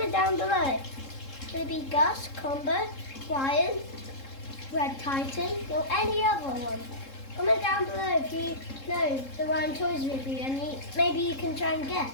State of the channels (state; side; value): late; right; 3.7 ms